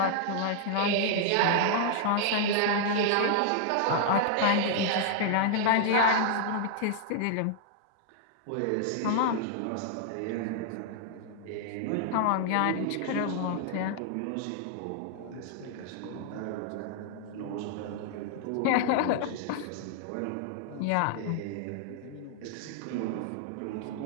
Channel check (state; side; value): different; both; correlation -0.01